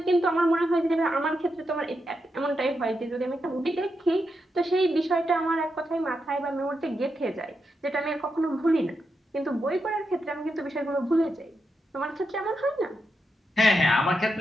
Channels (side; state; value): both; normal; correlation 0.85